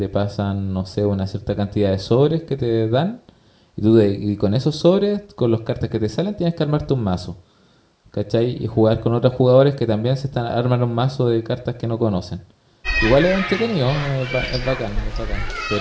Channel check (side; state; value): both; identical; correlation 1.00